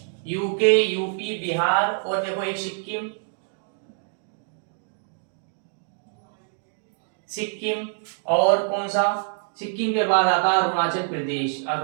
UK, UP, Bihar और देखो एक सिक्किम, सिक्किम और कौन सा, सिक्किम के बाद आता है अरुणाचल प्रदेश,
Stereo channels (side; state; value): left; silent; digital silence